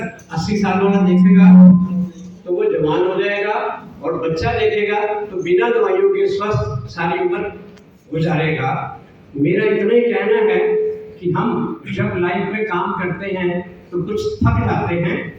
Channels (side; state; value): both; identical; correlation 1.00